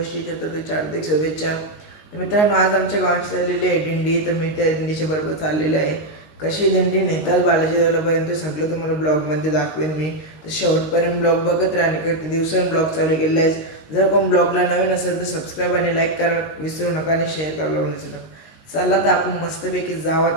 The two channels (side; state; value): right; late; 19 ms